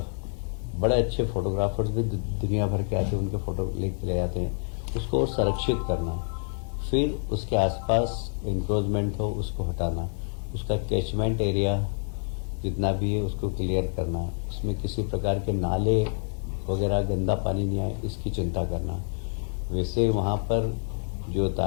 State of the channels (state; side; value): silent; right; digital silence